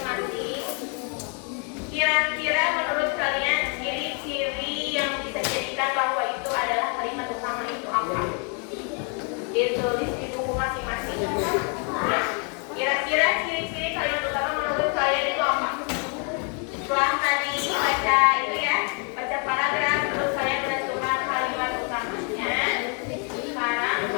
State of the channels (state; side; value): quieter; right; 38.3 dB